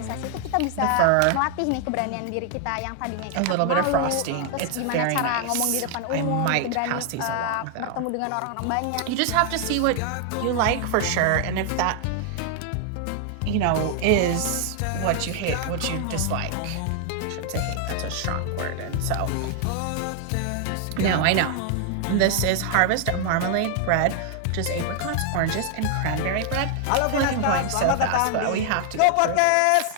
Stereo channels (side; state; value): both; different; correlation 0.00